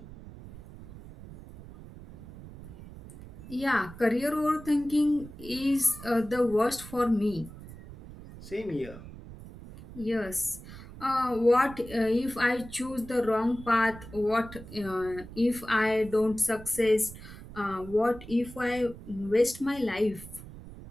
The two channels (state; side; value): noise; right; rumble, 15 dB below the sound